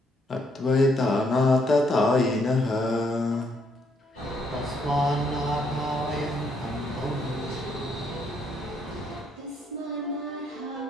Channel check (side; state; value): both; normal; correlation 0.72